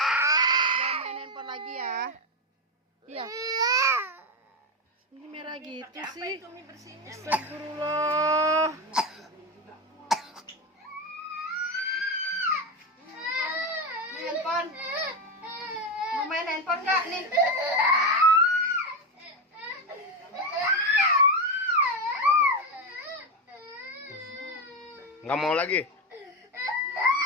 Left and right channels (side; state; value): both; normal; correlation 0.14